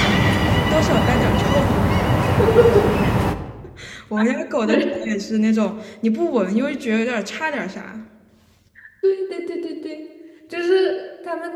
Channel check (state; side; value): identical; both; correlation 1.00